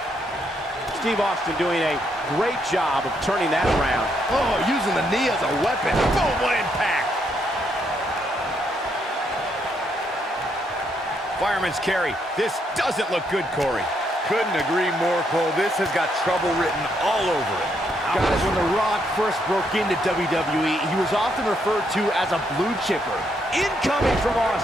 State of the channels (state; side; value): normal; both; correlation 0.75